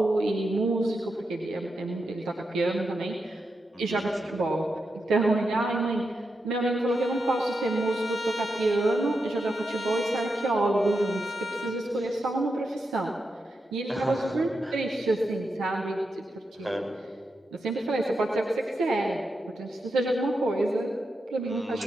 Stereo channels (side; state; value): both; normal; correlation 0.86